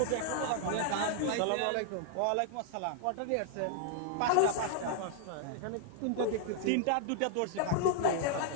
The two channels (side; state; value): both; different; correlation 0.00